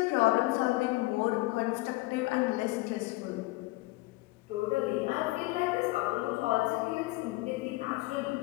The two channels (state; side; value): quieter; right; 21.0 dB